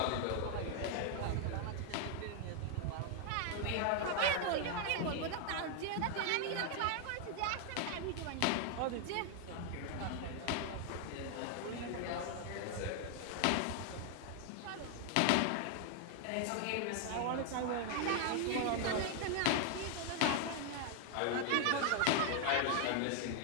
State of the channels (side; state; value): both; different; correlation 0.00